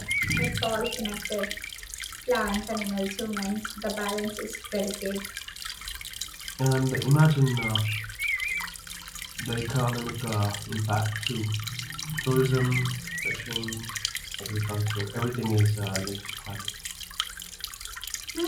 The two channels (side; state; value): both; identical; correlation 1.00